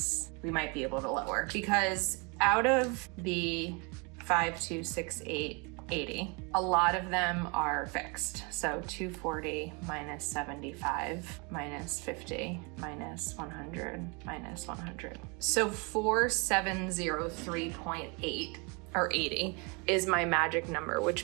we might be able to lower, because out of the 526880, a lot of them are fixed. So 240 minus 75 minus 50 minus 100 minus 100. So 4703.8 or 80 is my magic number,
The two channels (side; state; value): left; quieter; 31.4 dB